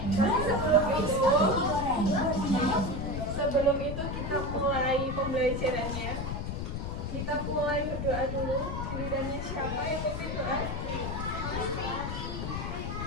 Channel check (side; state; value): left; noise; rumble, 3 dB below the sound